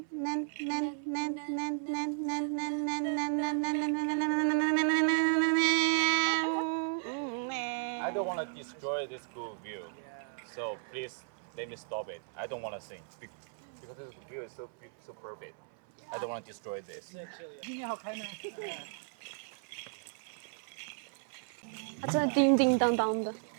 I don't want to destroy this good view, so please let me stop it. I don't want to sing because this view is so perfect. I don't want to destroy this. 它真的叮叮当当的。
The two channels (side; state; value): left; silent; 55 dB below the other